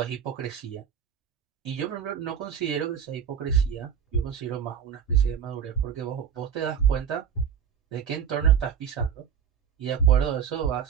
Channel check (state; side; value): quieter; left; 8.0 dB